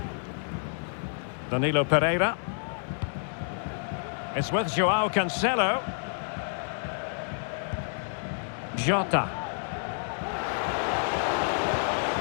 Danilo Pereira. It's with João Cancelo. Jota.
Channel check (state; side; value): silent; right; digital silence